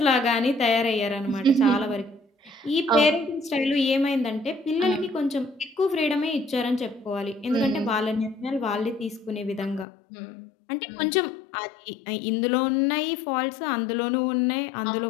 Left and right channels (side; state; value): right; drops out; at 9.9 s